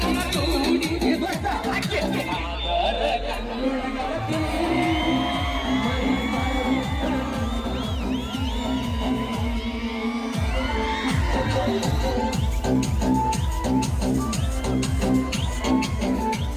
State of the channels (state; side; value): identical; both; correlation 1.00